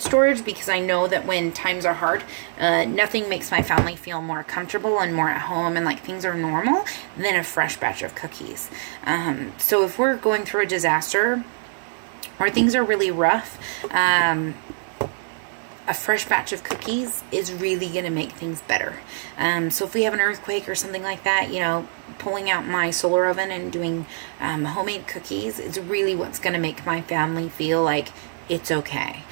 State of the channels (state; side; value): silent; left; 63 dB below the other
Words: storage because I know that when times are hard, nothing makes my family feel more comfortable and more at home and like things are normal than a fresh batch of cookies. So if we're going through a disaster or things are really rough, a fresh batch of cookies is really going to make things better. So if we have an earthquake or something like that, you know, pulling out my solar oven and doing homemade cookies is really what's going to make my family feel like it's okay.